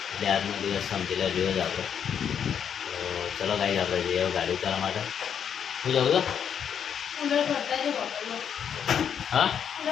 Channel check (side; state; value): right; quieter; 8.1 dB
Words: એટલે આજનો દિવસ સમજી લે રહ્યો જ આપણે. તો ચલો ગાઈઝ, આપણે જઈએ ગાડી ઉતારવા માટે. શું જાઉં છો? હા,